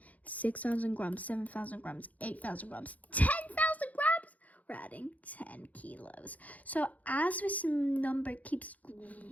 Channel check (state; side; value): late; right; 0.074 ms